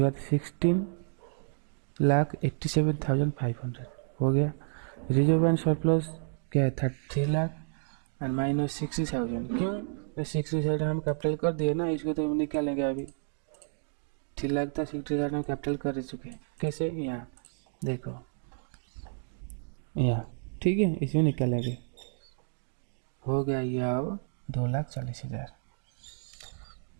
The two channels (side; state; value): left; silent; digital silence